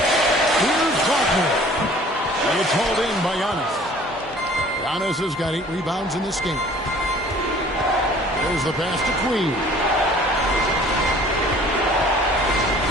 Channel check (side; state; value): both; normal; correlation 0.51